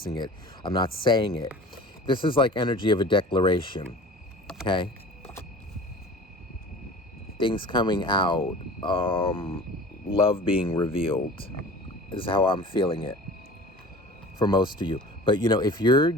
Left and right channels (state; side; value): normal; both; correlation 0.41